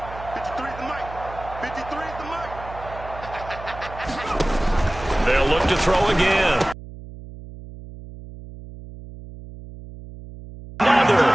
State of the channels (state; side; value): noise; right; hum, 14 dB below the sound